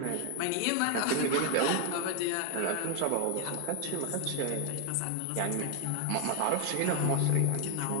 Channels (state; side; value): different; both; correlation 0.00